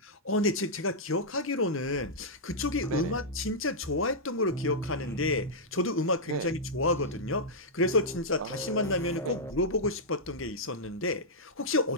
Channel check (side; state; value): both; normal; correlation -0.08